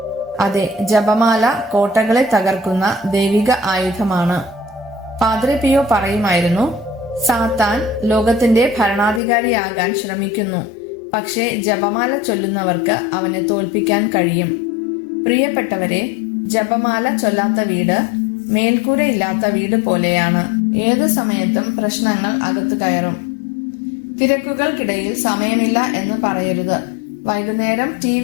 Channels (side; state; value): right; drops out; at 9.2 s